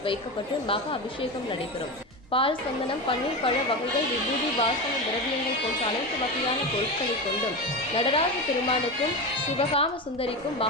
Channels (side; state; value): both; normal; correlation 0.21